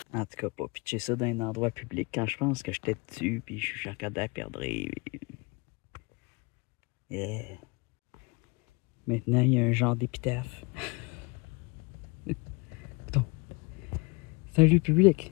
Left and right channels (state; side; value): quieter; right; 28.2 dB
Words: En tout cas, pas pitcher ça dans un endroit public quand je pense que j'étais dessus puis je regardais à perdre. Yeah. Maintenant, il y a un genre d'épitaphe. Bon. C'est un lieu